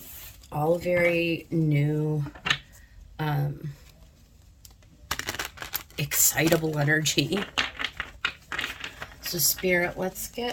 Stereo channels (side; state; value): both; identical; correlation 1.00